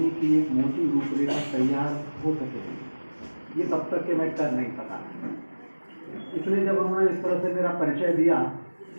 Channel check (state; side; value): inverted; both; correlation -1.00